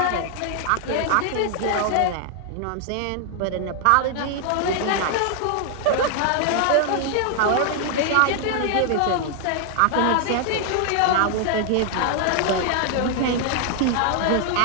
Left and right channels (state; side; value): different; both; correlation 0.00